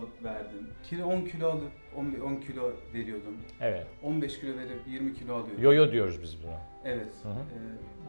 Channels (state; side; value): inverted; both; correlation -1.00